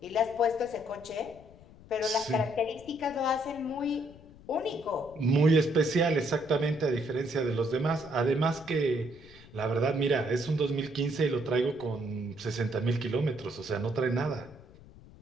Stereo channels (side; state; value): left; noise; rumble, 21 dB below the sound